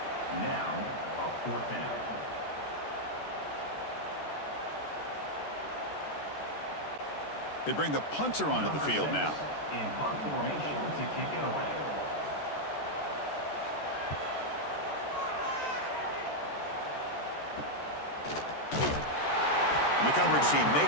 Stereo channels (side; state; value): right; late; 14 ms